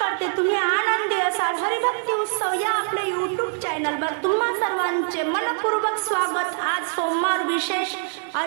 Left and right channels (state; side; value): silent; left; 63 dB below the other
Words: तुम्ही आनंदी असाल. हरिभक्ती उत्सव या आपल्या YouTube चॅनलवर तुम्हा सर्वांचे मनपूर्वक स्वागत. आज सोमवार विशेष